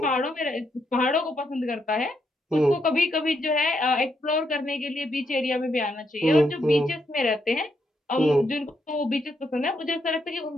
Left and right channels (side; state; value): both; normal; correlation 0.78